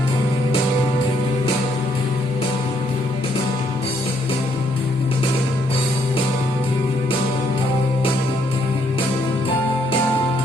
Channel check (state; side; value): normal; both; correlation 0.71